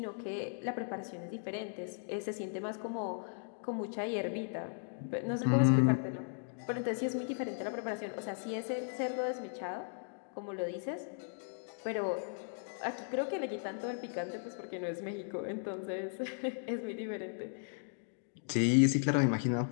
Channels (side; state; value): right; silent; digital silence